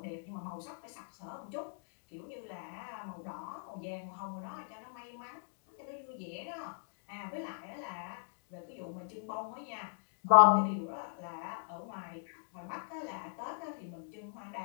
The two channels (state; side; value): silent; right; digital silence